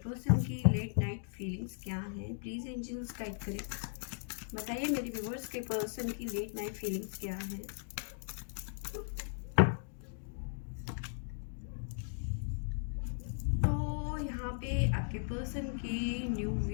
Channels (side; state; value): right; silent; digital silence